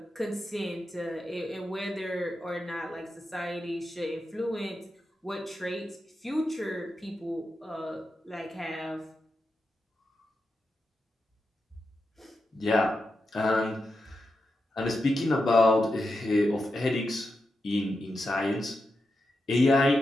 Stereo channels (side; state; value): both; normal; correlation 0.88